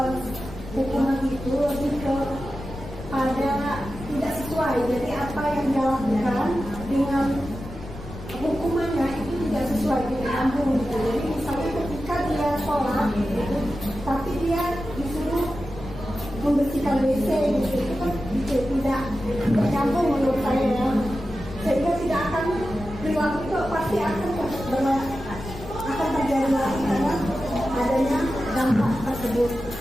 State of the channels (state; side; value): noise; left; rumble, 12 dB below the sound